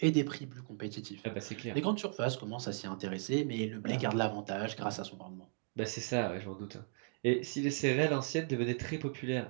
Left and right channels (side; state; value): left; silent; 53 dB below the other